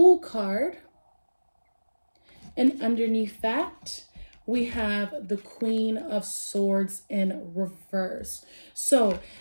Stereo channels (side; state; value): both; inverted; correlation -1.00